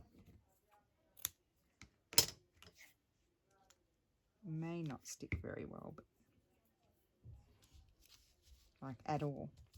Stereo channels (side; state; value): both; identical; correlation 1.00